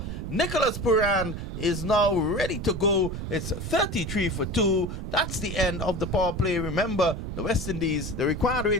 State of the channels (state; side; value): noise; right; rumble, 6 dB below the sound